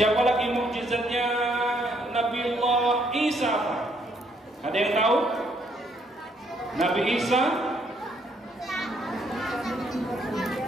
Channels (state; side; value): normal; both; correlation 0.70